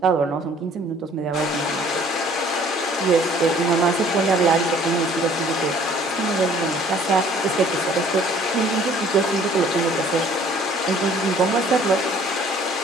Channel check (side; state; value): both; normal; correlation 0.56